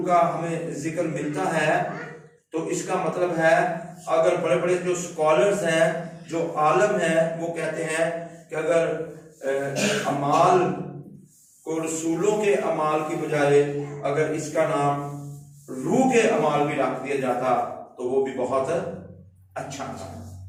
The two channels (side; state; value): both; identical; correlation 1.00